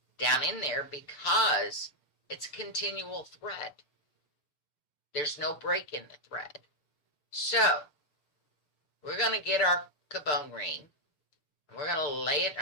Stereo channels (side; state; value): right; late; 6.7 ms